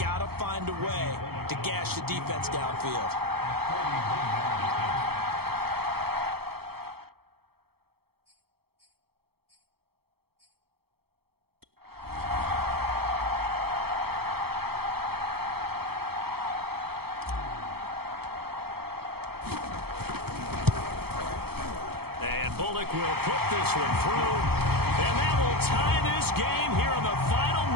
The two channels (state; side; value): late; left; 0.96 ms